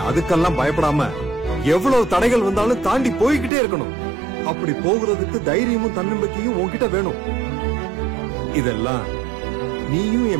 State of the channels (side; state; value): left; drops out; at 3.5 s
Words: அதுக்கெல்லாம் பயப்படாம எவ்வளவு தடைகள் வந்தாலும் தாண்டி போய்கிட்டே இருக்கணும். அப்படி போகிறதுக்கு தைரியமும் தன்னம்பிக்கையும் உன்கிட்ட வேணும். இதெல்லாம் நீயும்